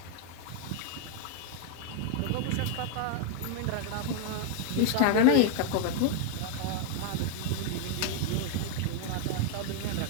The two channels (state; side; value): different; both; correlation 0.00